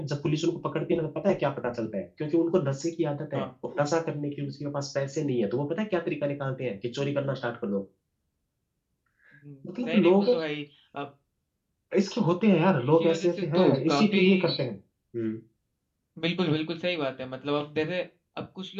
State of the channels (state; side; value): identical; both; correlation 1.00